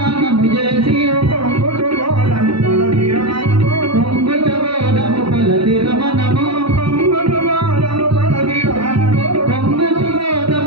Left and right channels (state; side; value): late; left; 0.75 ms